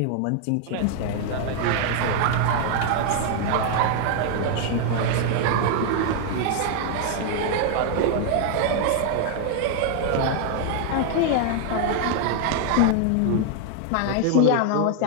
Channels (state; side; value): different; both; correlation 0.00